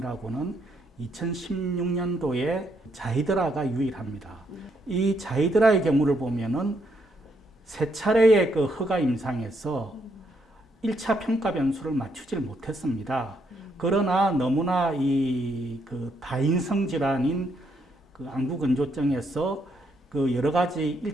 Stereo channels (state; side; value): normal; both; correlation 0.75